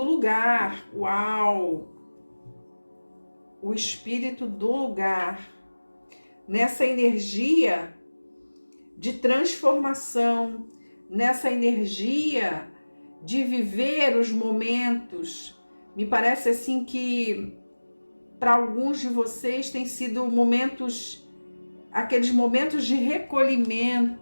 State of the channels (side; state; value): both; inverted; correlation -1.00